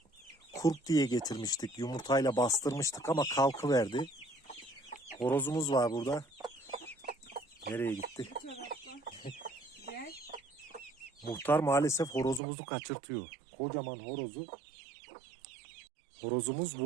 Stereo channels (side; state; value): left; drops out; at 12.4 s